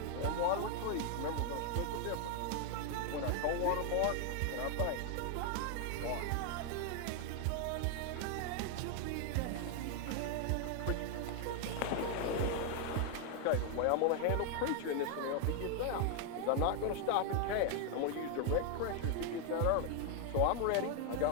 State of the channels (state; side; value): different; both; correlation 0.00